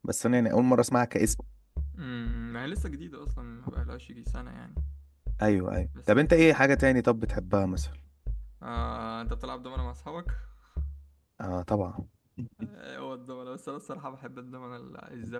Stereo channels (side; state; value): both; identical; correlation 1.00